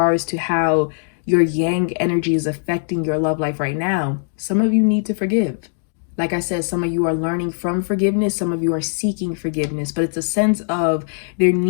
to how your yang energy is affecting your love life right now, some of you need to forgive. Like I said, some of you are learning from forgiveness, some of you are seeking forgiveness, but it's a sense of there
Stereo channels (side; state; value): right; silent; digital silence